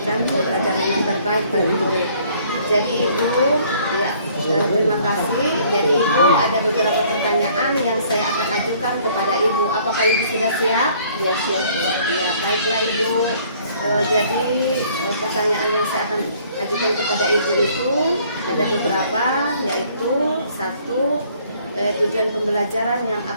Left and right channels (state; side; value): inverted; both; correlation -0.59